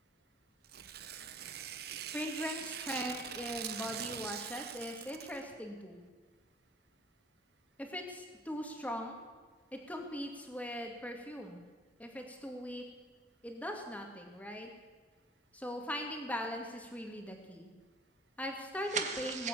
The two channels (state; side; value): normal; both; correlation 0.50